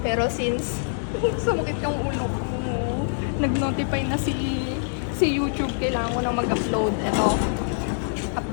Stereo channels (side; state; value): right; silent; digital silence